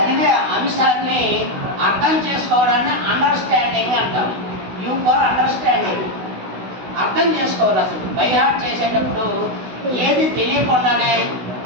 అంశాన్ని అర్థం చేసుకోవడాన్ని అండర్స్టాండింగ్ అంటాం. You for understanding. అర్థం చేసుకోవాలి. అసలు బై హార్ట్ చేసేటప్పుడు ఏది తెలియకుండానే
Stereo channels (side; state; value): left; late; 16 ms